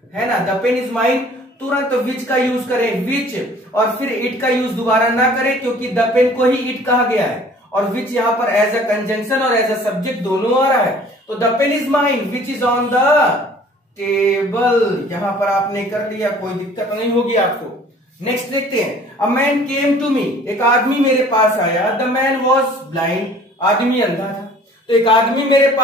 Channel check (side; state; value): both; normal; correlation 0.51